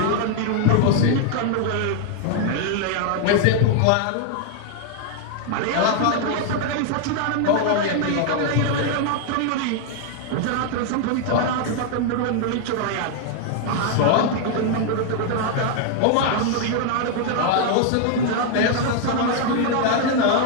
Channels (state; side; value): different; both; correlation 0.00